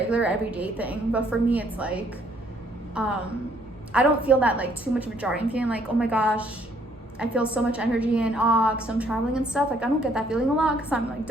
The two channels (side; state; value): both; normal; correlation 0.66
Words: everyday thing. But for me, it's like I don't feel that like too much of a jarring feeling like, oh my gosh, I feel so much energy and awe because I'm traveling and stuff. Like, I don't get that feeling a lot because I'm like